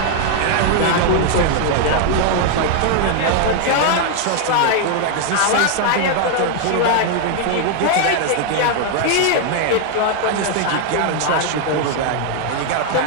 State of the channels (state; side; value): different; both; correlation 0.00